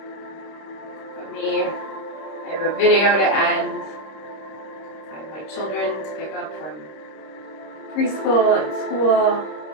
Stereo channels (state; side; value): late; right; 26 ms